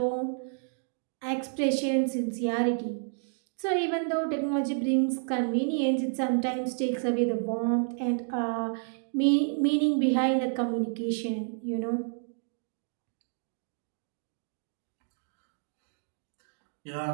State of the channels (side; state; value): left; silent; digital silence